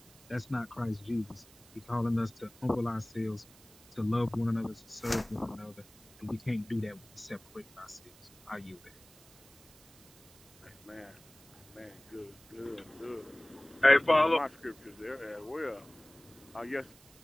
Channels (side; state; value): right; noise; hiss, 25 dB below the sound